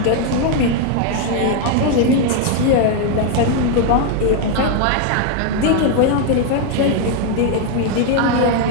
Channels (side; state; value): both; different; correlation 0.00